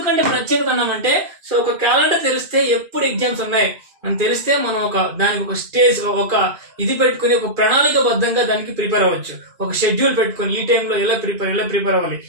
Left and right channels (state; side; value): late; left; 2.4 ms